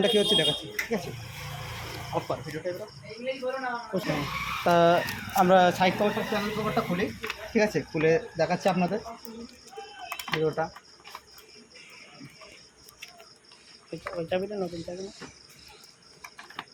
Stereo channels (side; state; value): both; identical; correlation 1.00